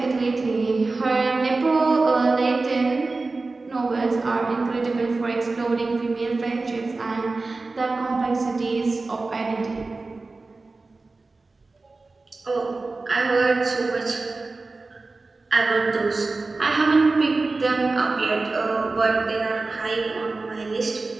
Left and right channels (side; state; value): left; quieter; 3.6 dB